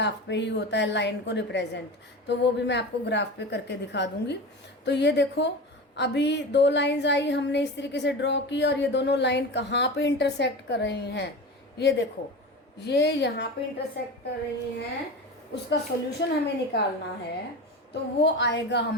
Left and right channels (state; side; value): normal; both; correlation 0.28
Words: पे ही होता है लाइन को रिप्रेजेंट, तो वो भी मैं आपको ग्राफ पे करके दिखा दूंगी। तो ये देखो अभी 2 लाइंस आई, हमने इस तरीके से ड्रॉ की, और ये दोनों लाइन कहाँ पे इंटरसेक्ट कर रही हैं, ये देखो ये यहाँ पे इंटरसेक्ट कर रही हैं। उसका सॉल्यूशन हमें निकालना है, तो वो आएगा